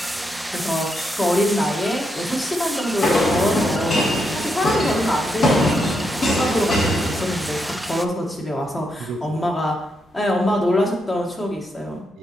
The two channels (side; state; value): both; normal; correlation 0.81